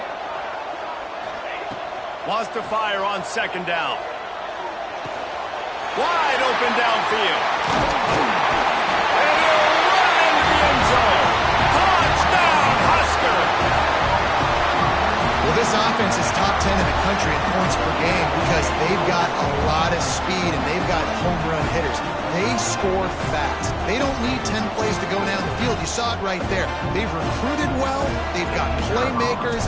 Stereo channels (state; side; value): identical; both; correlation 1.00